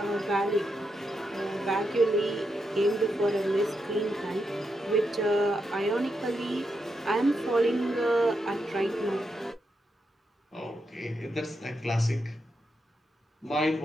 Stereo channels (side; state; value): both; normal; correlation 0.83